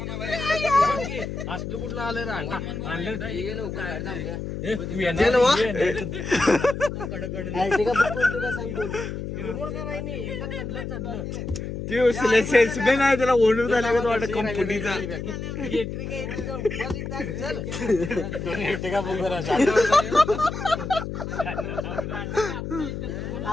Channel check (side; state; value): left; noise; hum, 6 dB below the sound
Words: असलं कुठलं आलं सेल्समॅन आहे त्याला ओनर झाला का वाटत कंपनीचा